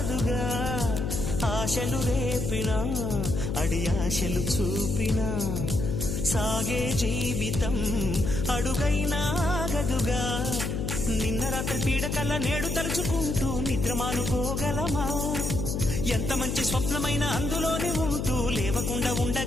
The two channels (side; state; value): left; noise; hum, 2 dB below the sound